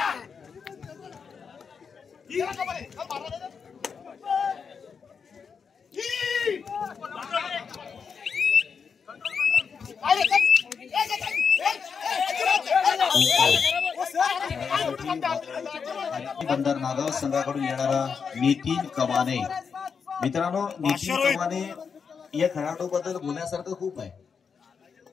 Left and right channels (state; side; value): quieter; right; 6.1 dB